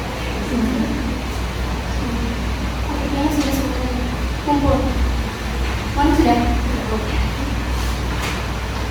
Kumpul. Mana sudah?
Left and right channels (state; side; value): identical; both; correlation 1.00